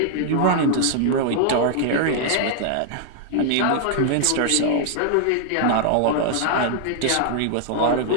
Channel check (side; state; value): both; different; correlation -0.01